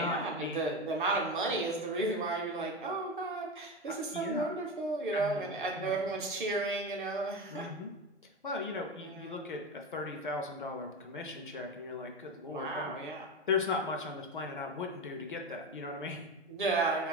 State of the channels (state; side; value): normal; both; correlation 0.21